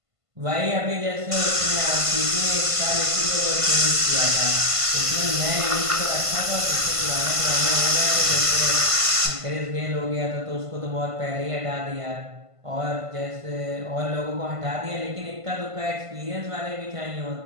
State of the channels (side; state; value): left; late; 1.5 ms